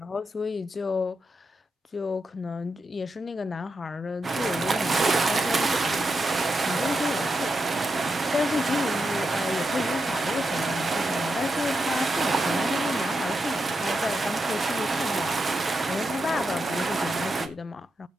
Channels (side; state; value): both; normal; correlation 0.86